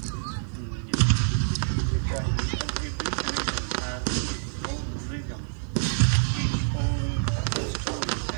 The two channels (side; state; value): left; silent; digital silence